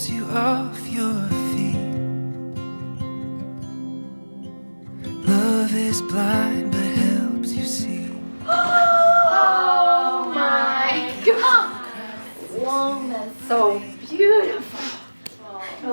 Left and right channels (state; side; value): inverted; both; correlation -1.00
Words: you off your feet. Love is blind but helps you see. Oh my God! Long, that's so beautiful.